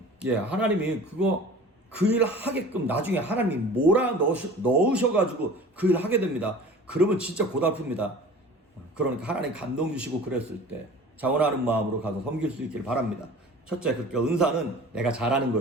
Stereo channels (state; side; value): normal; both; correlation 0.42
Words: 하나님이 그 일 하게끔 나중에 하나님이 넣으셔가지고 그 일 하게 됩니다. 그러면 진짜 고달픕니다. 그러니까 하나님 감동 주시고 그랬을 때 자원하는 마음으로 가서 섬길 수 있길 바랍니다. 첫째, 그러니까 은사는 내가 잘하는